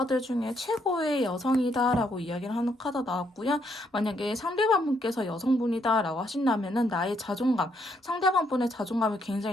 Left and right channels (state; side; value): normal; both; correlation 0.73